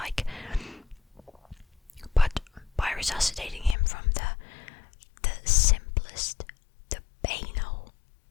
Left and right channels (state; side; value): drops out; right; at 3.8 s